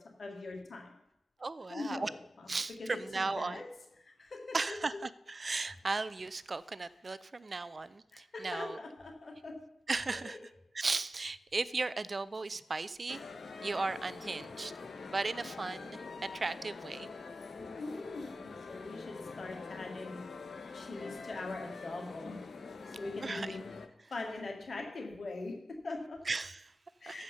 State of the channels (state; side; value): normal; both; correlation 0.94